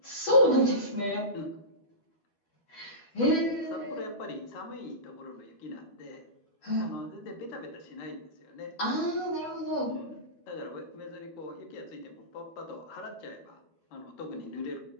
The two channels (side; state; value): right; late; 12 ms